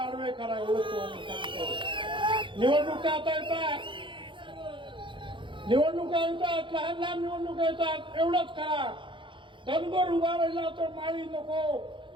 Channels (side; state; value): left; late; 0.24 ms